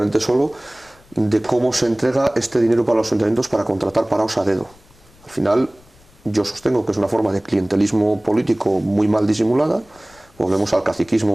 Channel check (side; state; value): left; noise; rumble, 28 dB below the sound